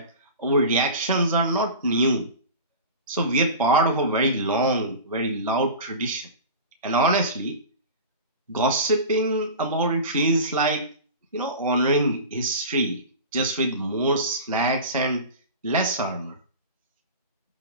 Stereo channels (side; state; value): both; inverted; correlation -0.32